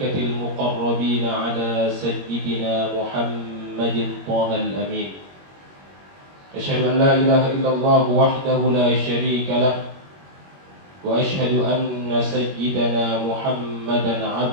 muqarrabin ala sayyidina Muhammadin tahal amin. Asyhadu an la ilaha illallah wahdahu la syarika lah wa asyhadu anna sayyidana Muhammadan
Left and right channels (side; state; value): left; late; 21 ms